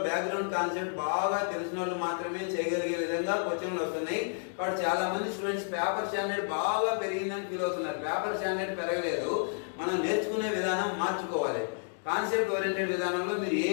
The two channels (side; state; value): right; silent; digital silence